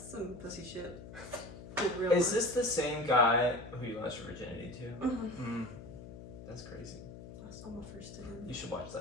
pussy shit. Real Is this the same guy who you lost your virginity to? Mm-hmm. That's crazy. Lost all my first to him. You should watch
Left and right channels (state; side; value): noise; left; hum, 13 dB below the sound